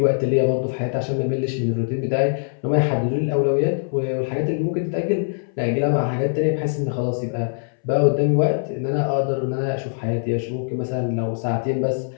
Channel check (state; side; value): silent; right; 64 dB below the other